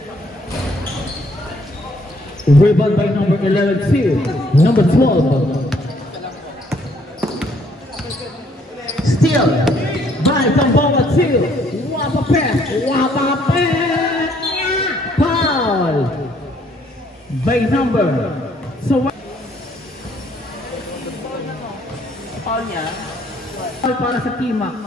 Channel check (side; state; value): both; normal; correlation 0.65